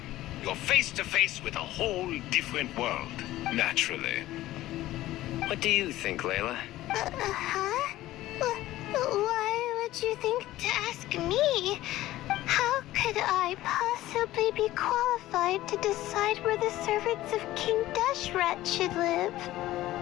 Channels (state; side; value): quieter; right; 15.6 dB